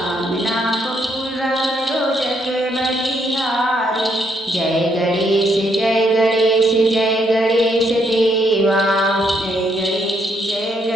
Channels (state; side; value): normal; both; correlation 0.74